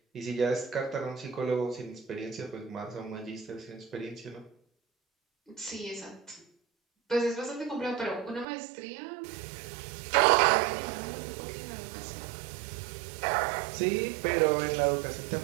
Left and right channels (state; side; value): drops out; left; at 8.5 s